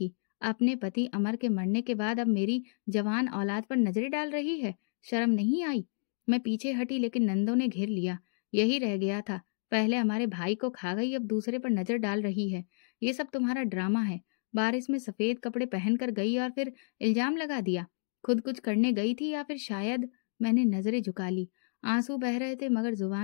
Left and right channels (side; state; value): right; silent; digital silence